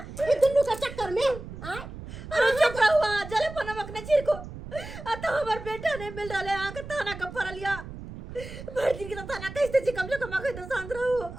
ई दुन्नु के चक्कर में आ अरे चुप रहुआ जले पनमक ने चिर को आ तो हमर बेटा ने मिल रहले आ के थाना का परलिया भर दिन के तो थाना कैसे छी, कम से कम आके तो शांत रहो।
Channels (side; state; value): right; noise; rumble, 12 dB below the sound